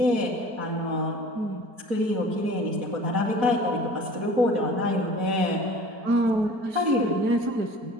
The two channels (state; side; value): late; left; 4.5 ms